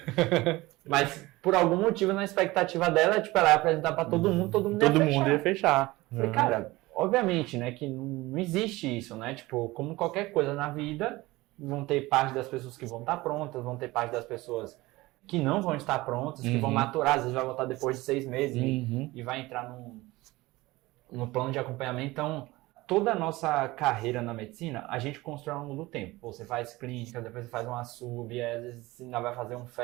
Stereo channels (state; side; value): quieter; left; 20.0 dB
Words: Mas por algum motivo na expectativa dela, tipo, ela ia apresentar pra todo mundo ia fechar. Falei, cara, obviamente, né, que não existe isso, né? Tipo, como qualquer coisa na vida, vão ter parte das pessoas que vão estar prontas, vão ter parte das pessoas que não vão estar prontas, que vão maturar, às vezes vai voltar depois de 6 meses e vai entrar no plano de acompanhamento. Então, toda a nossa carreira na medicina, a gente constrói ao longo do tempo. Você faz clínica, depois você faz uma sub, às vezes você ainda vai fazer um